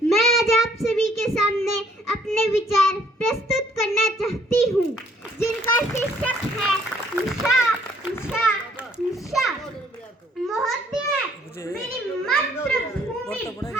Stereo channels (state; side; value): normal; both; correlation 0.63